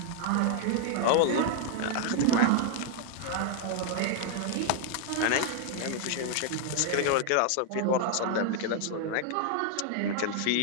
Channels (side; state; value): both; different; correlation 0.00